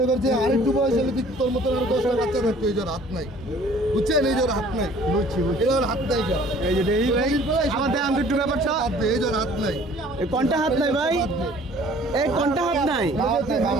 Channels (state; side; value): normal; both; correlation 0.53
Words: করছে আরেকটু বয়স হলে তোর মতন আরো 10টা বাচ্চা থাকতো। এই যার হাত নাই, বুঝছেন? এই যার হাত নাই, বুঝছি এর হাত নাই। এই যে আমাদের আমি একটু ব্যাপারটা এই যার হাত নাই, এই কোনটা হাত নাই ভাই? এই কোনটা হাত নাই?